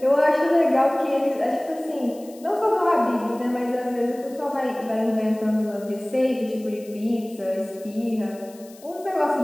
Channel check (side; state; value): left; noise; hiss, 23 dB below the sound